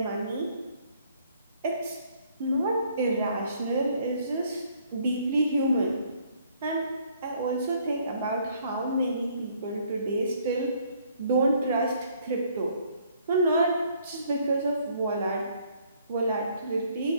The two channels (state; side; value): inverted; both; correlation -0.64